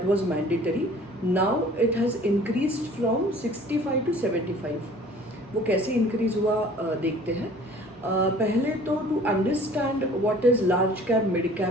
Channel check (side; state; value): both; normal; correlation 0.49